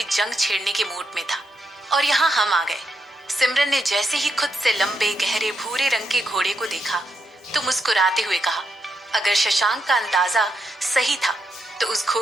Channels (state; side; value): normal; both; correlation 0.82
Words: जंग छेड़ने के मूड में था। और यहाँ हम आ गए। सिमरन ने जैसे ही खुद से लंबे गहरे भूरे रंग के घोड़े को देखा तो मुस्कुराते हुए कहा, अगर शशांक का अंदाजा सही था तो उस